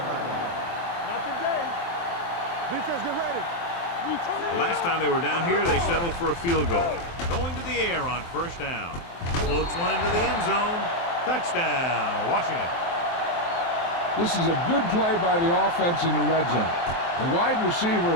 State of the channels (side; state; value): right; late; 23 ms